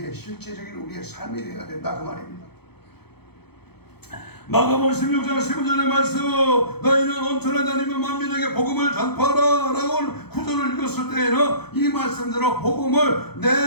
실제적인 우리의 삶이 되어야 된다 그 말입니다. 마가복음 16장 15절의 말씀, 너희는 온천에 다니며 만민에게 복음을 전파하라 라고 구절을 읽었을 때에는 이 말씀대로 복음을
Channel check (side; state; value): right; late; 0.97 ms